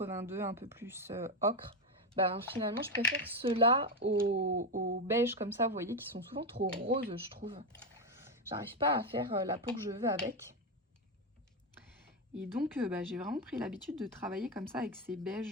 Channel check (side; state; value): both; normal; correlation 0.10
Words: un peu plus ocre. Ben, finalement, je préfère ceux-là au beige comme ça, vous voyez, qui sont souvent trop roses, je trouve. J'arrive pas à faire la peau que je veux avec. Et donc, j'ai vraiment pris l'habitude de travailler comme ça avec ces